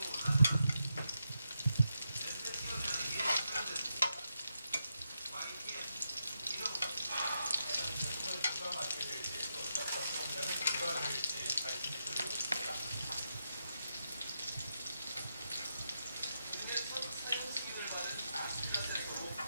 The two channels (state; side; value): inverted; both; correlation -0.85